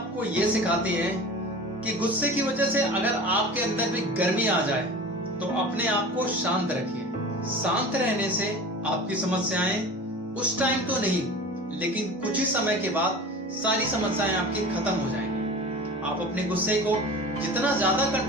ये सिखाती है कि गुस्से की वजह से अगर आपके अंदर भी गर्मी आ जाए तो अपने आप को शांत रखिए। शांत रहने से आपकी समस्याएं उस टाइम तो नहीं, लेकिन कुछ ही समय के बाद सारी समस्याएं आपकी खत्म हो जाएंगी। आप अपने गुस्से को जितना ज्यादा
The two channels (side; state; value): both; normal; correlation 0.36